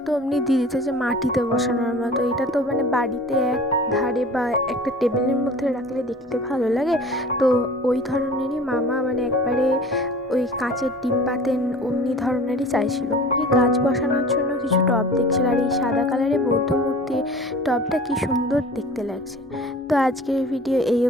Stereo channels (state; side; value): normal; both; correlation 0.43